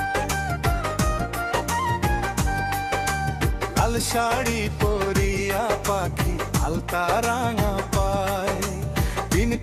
লাল শাড়ি পরিয়া পাখি আলতা রাঙা পাই, দিন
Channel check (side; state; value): both; identical; correlation 1.00